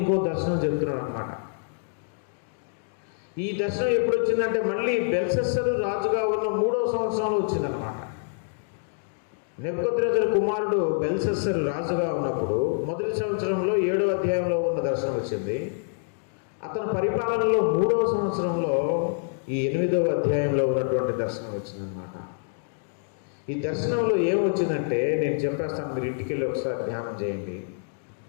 దర్శనం చెప్తున్నాడు అన్నమాట. ఈ దర్శనం ఎప్పుడు వచ్చిందంటే మళ్ళీ బెల్షస్సరు రాజుగా ఉన్న 3వ సంవత్సరంలో వచ్చిందనమాట. నెబుకద్నెజరు కుమారుడు బెల్షస్సరు రాజుగా ఉన్నప్పుడు మొదటి సంవత్సరంలో 7వ అధ్యాయంలో ఉన్న దర్శనం వచ్చింది. అతని పరిపాలనలో 3వ సంవత్సరంలో ఈ 8వ అధ్యాయంలో ఉన్నటువంటి దర్శనం వచ్చిందనమాట. ఈ దర్శనంలో ఏమొచ్చిందంటే నేను చెప్పేస్తాను, మీరు ఇంటికి వెళ్ళి ఒకసారి ధ్యానం చేయండి.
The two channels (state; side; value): silent; right; digital silence